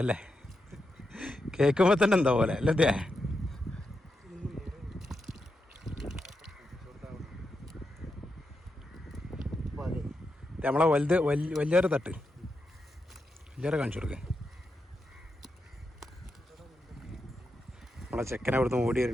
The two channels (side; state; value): both; normal; correlation 0.86